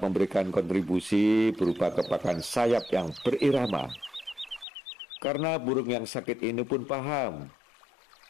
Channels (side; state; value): right; drops out; at 4.7 s